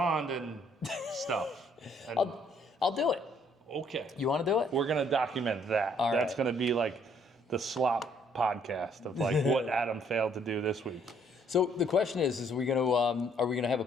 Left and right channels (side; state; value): both; normal; correlation 0.65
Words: and stuff. And, I'll do it. okay. You want to do it? We're gonna document that. All That's right. gonna be the slop podcast of what Adam failed to do this week. So the question is we are we gonna have a